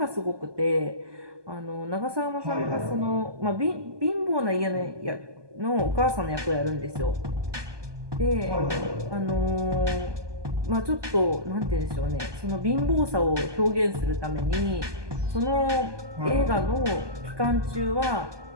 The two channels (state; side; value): late; left; 1.2 ms